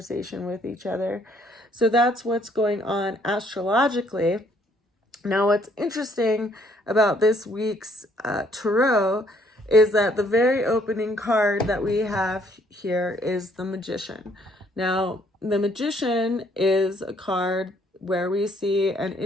with each other. So that's what's going on astrologically. Now, what's interesting about this week's tarot is that the very opening card that we have here is the Magician. Now, the Magician is a card where we see an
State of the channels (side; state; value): both; normal; correlation 0.65